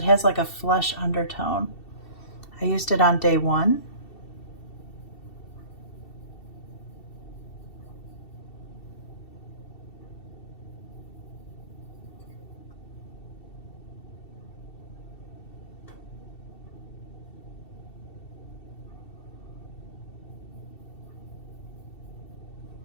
has like a flesh undertone. I used it on day 1.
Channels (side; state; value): right; late; 2.7 ms